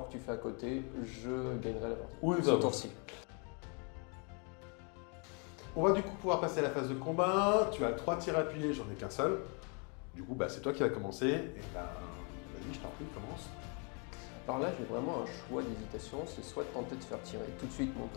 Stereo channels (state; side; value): quieter; right; 36.1 dB